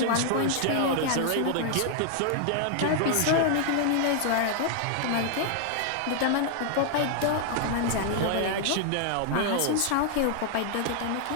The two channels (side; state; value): both; different; correlation 0.00